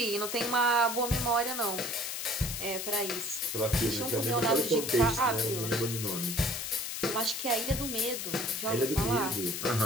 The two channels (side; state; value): left; noise; hiss, 4 dB below the sound